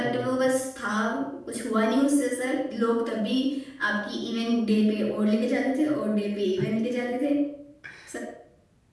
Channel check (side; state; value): both; identical; correlation 1.00